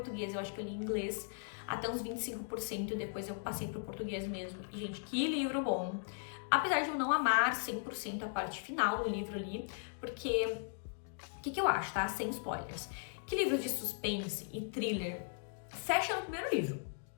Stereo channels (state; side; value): silent; right; digital silence